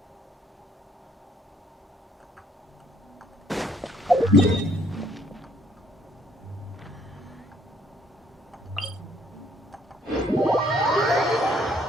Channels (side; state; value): both; normal; correlation 0.65